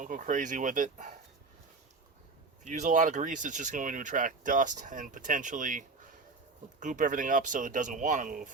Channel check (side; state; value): left; quieter; 4.0 dB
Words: go crazy with it. If you use a lot of grease, it's just going to attract dust and potentially goop everything up so it doesn't want to move.